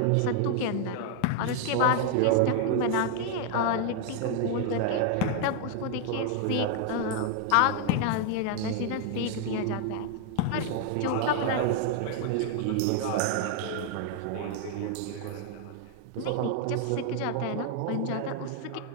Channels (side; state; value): both; different; correlation 0.00